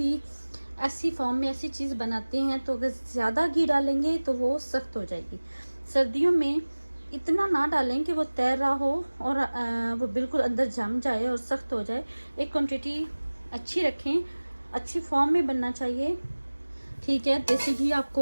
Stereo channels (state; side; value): inverted; both; correlation -1.00